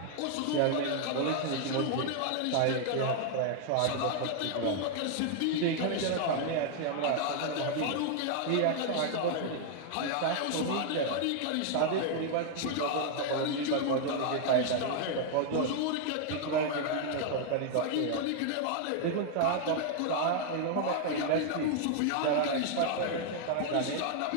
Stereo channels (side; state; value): both; different; correlation 0.00